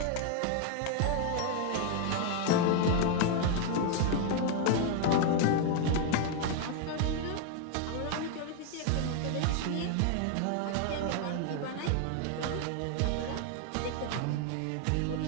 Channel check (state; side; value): different; both; correlation 0.00